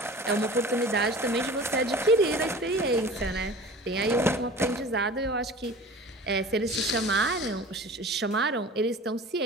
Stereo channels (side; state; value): both; normal; correlation 0.40